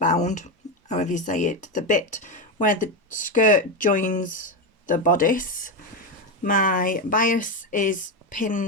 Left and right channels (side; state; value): both; normal; correlation 0.12